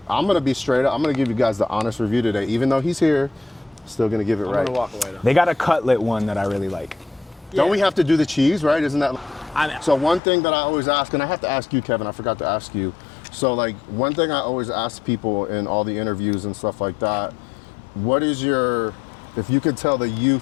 gonna be straight up. I'm gonna give you guys the honest review today, even though he's here. Still gonna give it I'm right. gonna walk away though. They got a cutlet one that I really like. Don't we have to do the cheese, right? Isn't that? I know. So one thing that I always ask, and I have to ask you, Kevin, I forgot to ask you. So like one thing I always ask people in all the interviews and stuff like that, what is if you could tell the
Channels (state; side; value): drops out; right; at 10.2 s